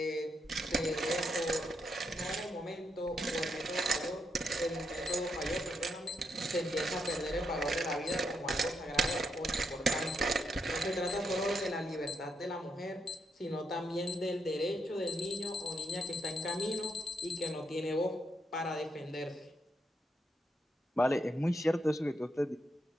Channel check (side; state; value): both; normal; correlation 0.80